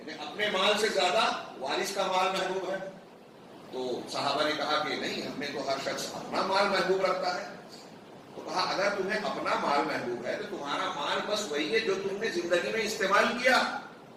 اپنے مال سے زیادہ وارث کا مال محبوب ہے. تو صحابہ نے کہا کہ نہیں، ہم نے تو ہر شخص اپنا مال محبوب رکھتا ہے. تو کہا اگر تمہیں اپنا مال محبوب ہے تو تمہارا مال بس وہی ہے جو تم نے زندگی میں استعمال کیا.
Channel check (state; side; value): identical; both; correlation 1.00